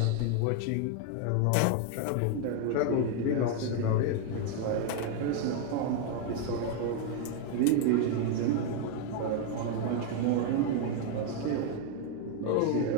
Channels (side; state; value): both; different; correlation 0.01